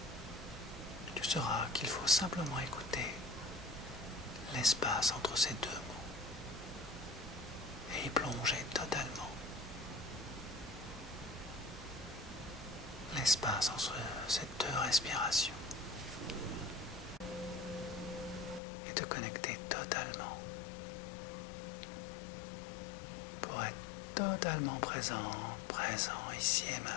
tu sauras qu'il faut simplement écouter l'espace entre ces deux mots et y plonger totalement. L'espace entre ces deux respirations et te connecter totalement pour être totalement présent ici et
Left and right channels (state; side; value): drops out; right; at 18.6 s